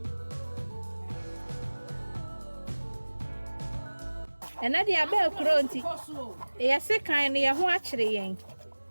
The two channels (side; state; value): both; inverted; correlation -1.00